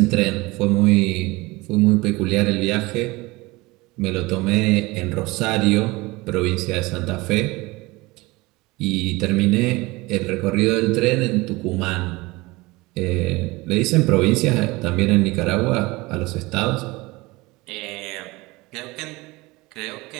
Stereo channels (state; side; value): quieter; left; 22.3 dB